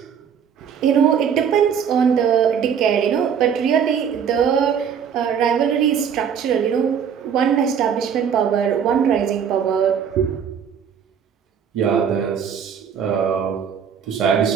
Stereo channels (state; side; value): quieter; left; 7.7 dB